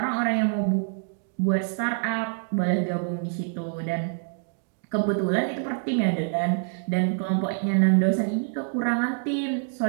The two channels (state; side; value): silent; left; digital silence